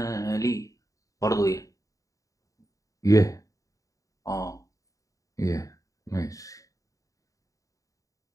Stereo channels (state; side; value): late; right; 0.16 ms